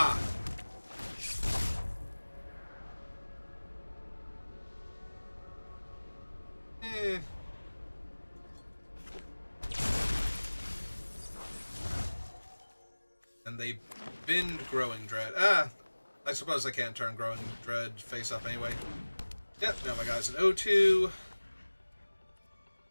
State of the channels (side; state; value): both; inverted; correlation -1.00